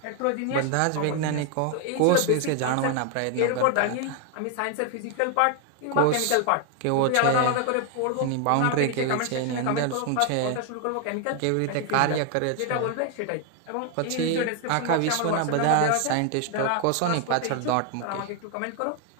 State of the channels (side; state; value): both; different; correlation 0.01